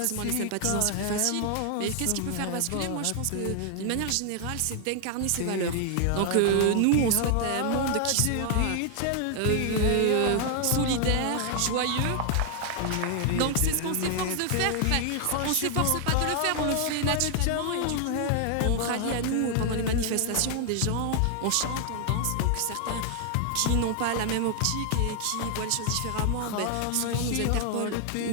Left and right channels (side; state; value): both; different; correlation 0.00